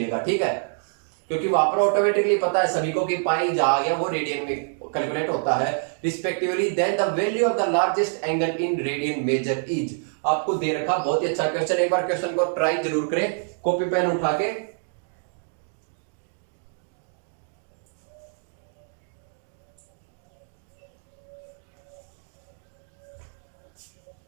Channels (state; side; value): silent; left; digital silence